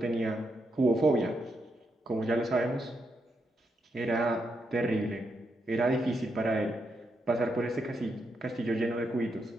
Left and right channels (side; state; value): both; normal; correlation 0.82